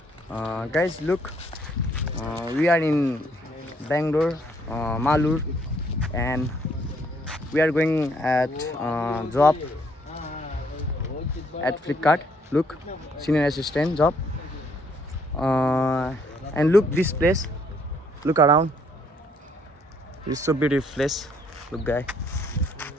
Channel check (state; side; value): normal; both; correlation 0.67